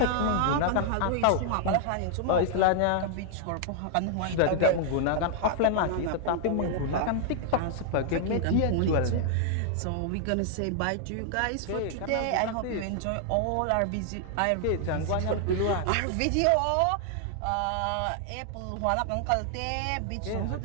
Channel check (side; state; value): both; different; correlation 0.00